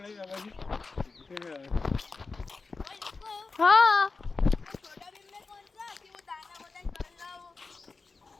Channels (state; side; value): quieter; right; 4.1 dB